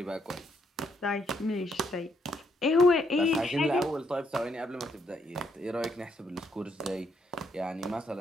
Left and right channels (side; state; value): both; normal; correlation 0.74